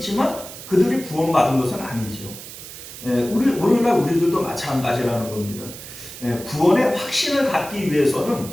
그들이 구원받은 것은 아니죠. 오늘날 우리들도 마찬가지라는 겁니다. 구원의 확신을 갖기 위해서는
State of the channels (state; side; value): noise; right; hiss, 13 dB below the sound